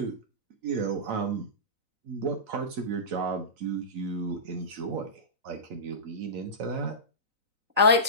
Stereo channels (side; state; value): left; late; 3.9 ms